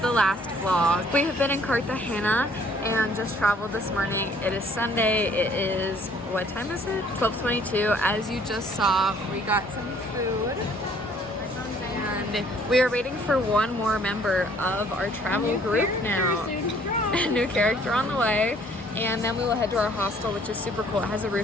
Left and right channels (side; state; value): both; normal; correlation 0.60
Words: the last vlog, we have been in Cartagena and just traveled this morning. It is Sunday. It is, what time is it? 12:22. As you just saw, we got some food. And we are waiting for one more member of our travel group now. A new character on the way. And then we will head to our hostel, which is super cool. It has a